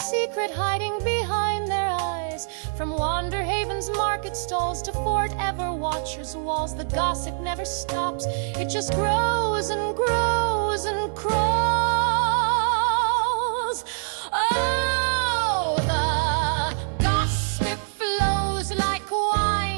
hiding behind their eyes. skies. From Wanderhaven's market stalls to Fort Everwatcher's walls, the gossip never stops. It just grows and grows and crawls. Oh, the gossip flows like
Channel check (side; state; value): left; silent; digital silence